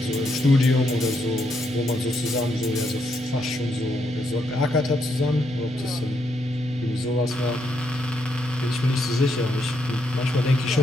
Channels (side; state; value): left; noise; hum, 25 dB below the sound